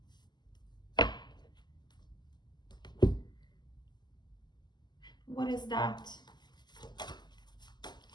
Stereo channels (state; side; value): late; right; 0.21 ms